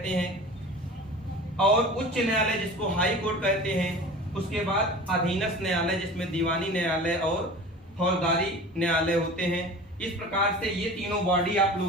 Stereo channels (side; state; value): both; normal; correlation 0.38